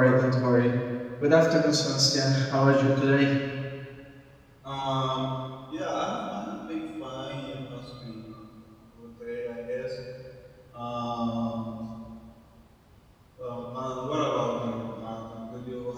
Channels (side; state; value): both; identical; correlation 1.00